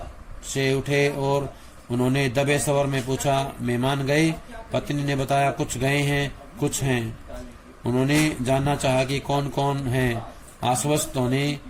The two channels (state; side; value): identical; both; correlation 1.00